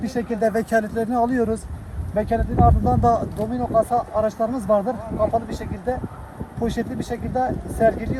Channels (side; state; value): both; identical; correlation 1.00